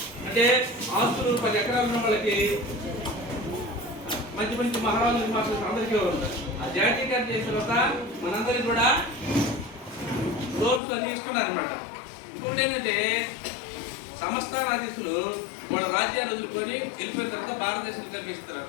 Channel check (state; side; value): drops out; right; at 10.8 s